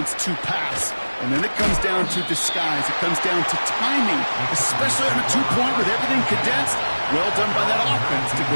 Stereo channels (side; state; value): both; inverted; correlation -1.00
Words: to pass. And then it comes down to disguise. It comes down to timing, especially on a 2-point with everything condensed. Well done by that offense to